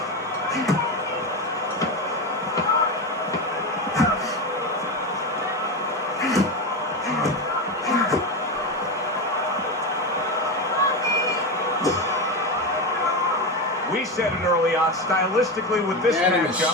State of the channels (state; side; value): normal; both; correlation 0.17